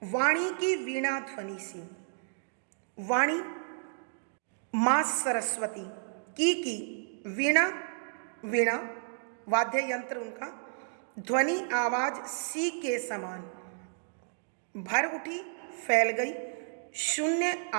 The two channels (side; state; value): left; silent; digital silence